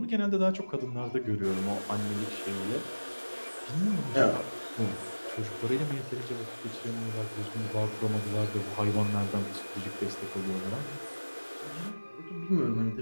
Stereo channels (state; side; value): inverted; both; correlation -1.00